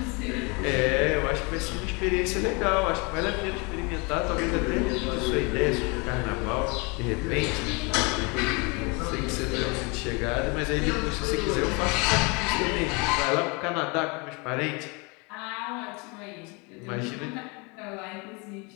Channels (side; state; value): right; quieter; 29.7 dB